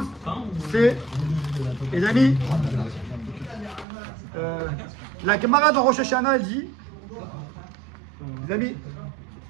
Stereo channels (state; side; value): drops out; left; at 3.9 s